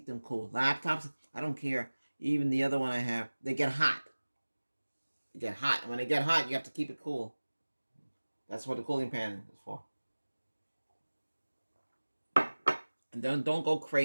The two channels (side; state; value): both; inverted; correlation -1.00